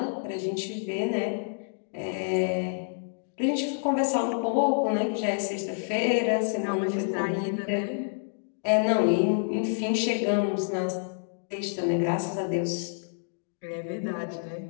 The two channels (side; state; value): right; silent; digital silence